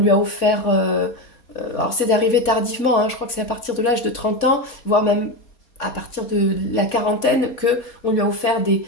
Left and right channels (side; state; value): right; late; 4.2 ms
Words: a offert, alors c'est arrivé tardivement, hein, je crois que c'est à partir de l'âge de 30 ans, voire même à partir de la quarantaine, qu'on lui a offert